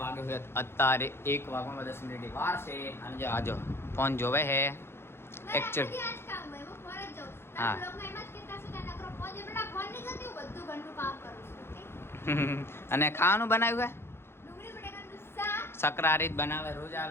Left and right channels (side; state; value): right; late; 0.12 ms